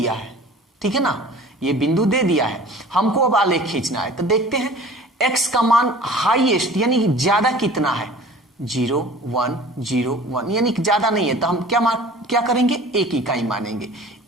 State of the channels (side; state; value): both; normal; correlation 0.45